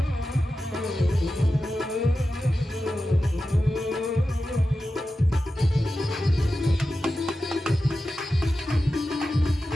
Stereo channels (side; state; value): both; normal; correlation 0.92